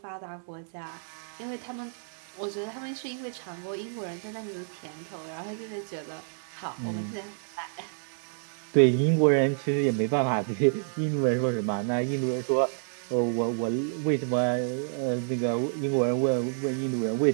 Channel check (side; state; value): left; silent; 59 dB below the other